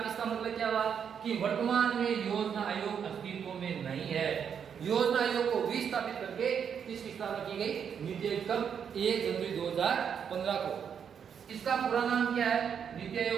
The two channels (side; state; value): left; quieter; 7.6 dB